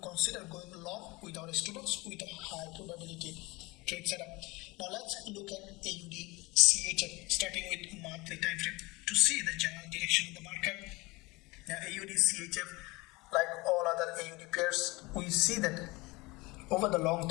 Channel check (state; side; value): quieter; right; 23.4 dB